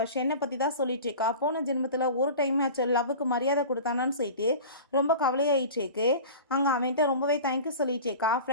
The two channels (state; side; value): inverted; both; correlation -0.36